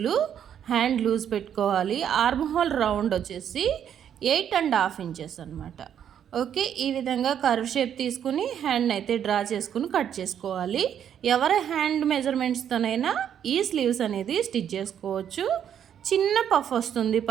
హ్యాండ్ లూజ్ పెట్టుకోవాలి. ఆర్మ్ హోల్ రౌండ్ వచ్చేసి 8.5 ఇంచెస్ అనమాట. ఓకే, ఈ విధంగా కర్వ్ షేప్ తీసుకుని హ్యాండ్ అయితే డ్రా చేసుకుని కట్ చేసుకోవాలి. ఎవరి హ్యాండ్ మెజర్మెంట్స్తోనైనా ఈ స్లీవ్స్ అనేది స్టిచ్ చేసుకోవచ్చు. చిన్న పఫ్ వస్తుంది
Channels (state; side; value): quieter; left; 9.2 dB